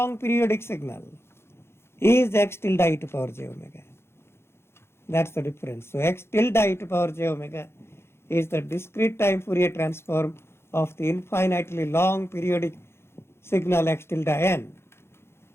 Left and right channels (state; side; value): late; right; 0.12 ms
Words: periodic signal, is x tilde e to power j omega. That's the difference. So x tilde e to power j omega is the discrete time Fourier transform of the infinitely long periodic signal x tilde n.